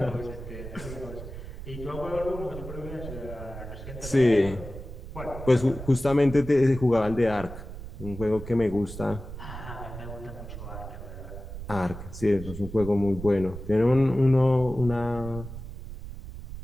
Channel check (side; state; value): right; noise; rumble, 11 dB below the sound